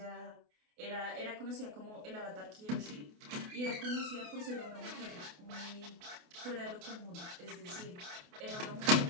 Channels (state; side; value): late; left; 28 ms